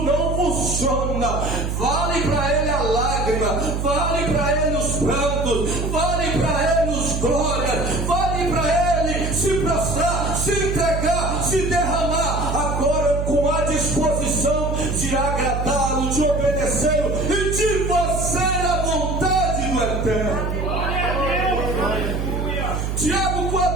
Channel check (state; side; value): noise; right; hum, 2 dB below the sound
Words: não funciona. Vale para ele a lágrima, vale para ele os prantos, vale para ele os glórias, vale para ele se prostrar, se entregar, se derramar, agora com a disposição de agradá-lo, de obedecê-lo e de fazer a vontade do Eterno. Tiago